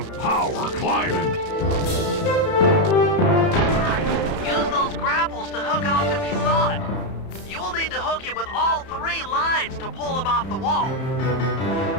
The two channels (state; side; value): late; right; 31 ms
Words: power climbing. Use those grapples to hook onto Misan. You will need to hook it with all 3 lines to pull him off the wall.